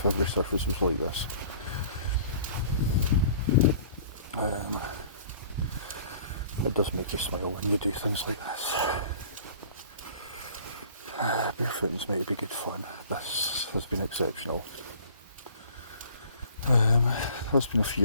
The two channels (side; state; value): both; inverted; correlation -0.50